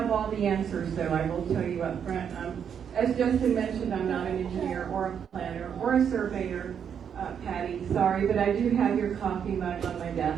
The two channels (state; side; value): quieter; left; 7.9 dB